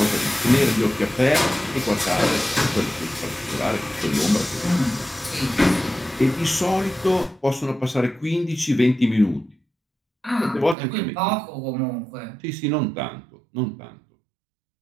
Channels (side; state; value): left; drops out; at 10.8 s